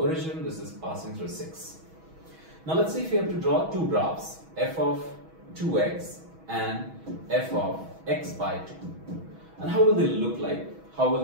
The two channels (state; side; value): late; left; 6.2 ms